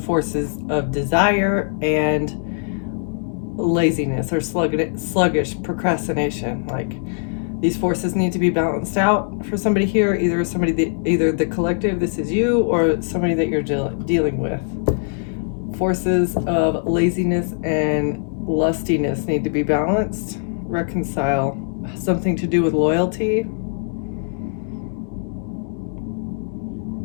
of desire and laziness or sluggish procrastination. Like, these forces need to be balanced out for somebody here. Either the collective, this is you, or somebody that you're dealing with. Forces of laziness and lustiness need to be balanced, reconcile. Something to do with loyalty.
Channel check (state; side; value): silent; right; digital silence